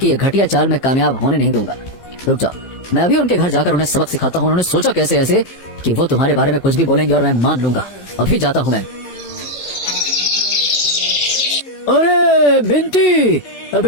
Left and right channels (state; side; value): late; right; 15 ms